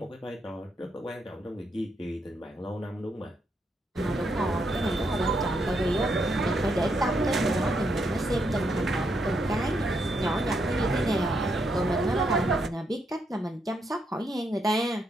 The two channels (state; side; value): normal; both; correlation 0.78